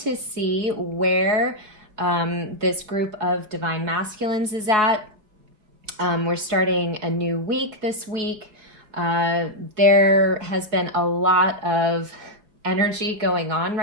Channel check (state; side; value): late; left; 4.7 ms